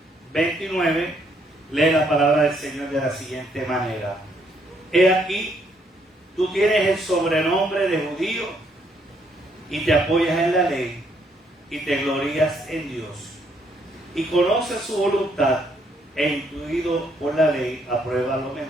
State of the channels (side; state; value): both; normal; correlation 0.71